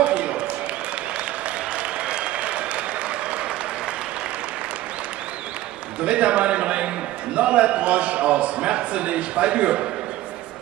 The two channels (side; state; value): left; quieter; 15.3 dB